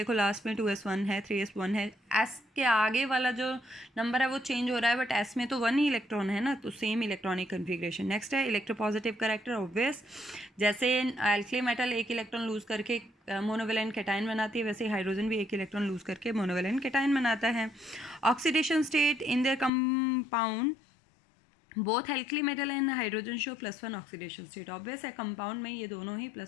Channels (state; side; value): drops out; right; at 19.7 s